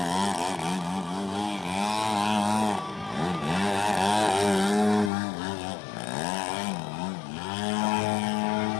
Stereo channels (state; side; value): drops out; right; at 5.1 s